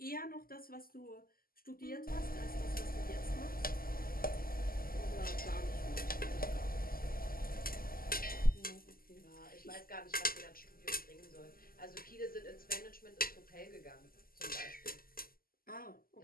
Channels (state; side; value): late; right; 0.42 ms